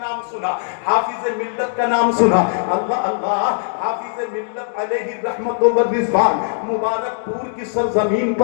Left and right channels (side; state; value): right; silent; digital silence